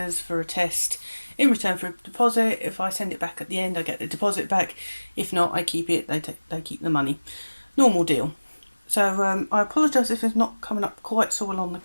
for a test in return for a deposit. If I send it back at the end, I get the deposit back. If not, I keep it, they keep the money. Normal deal. So I apologise if it's not coming up quite so well on the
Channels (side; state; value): both; inverted; correlation -1.00